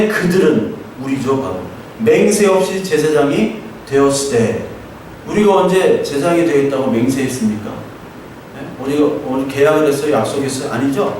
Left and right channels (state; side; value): identical; both; correlation 1.00